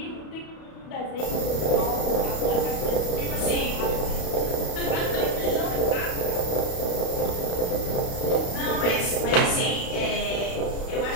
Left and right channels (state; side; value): late; right; 32 ms